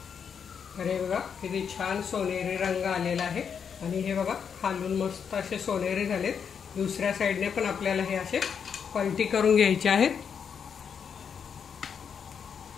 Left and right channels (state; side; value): quieter; right; 7.1 dB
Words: अरे बघा किती छान सोनेरी रंग आलेला आहे आणि हे बघा खालून मस्त असे सोनेरी झालेत। दुसऱ्या साईडने पण आपल्याला हे असे पलटी करून घ्यायचे आहेत।